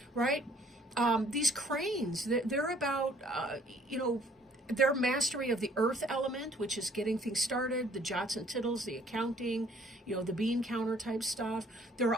right? These cranes, they're about, their mastery of the earth element, which is getting things started, the jots and tittles, the accounting, the bean counter type stuff. There are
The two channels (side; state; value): both; normal; correlation 0.59